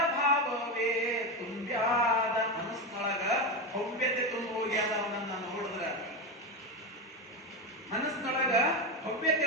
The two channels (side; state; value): both; normal; correlation 0.15